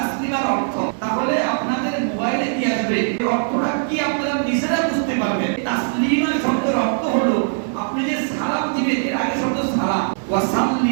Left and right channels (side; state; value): left; silent; digital silence